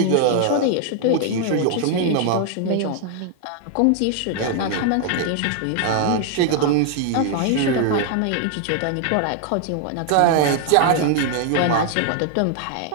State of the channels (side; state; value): both; different; correlation 0.00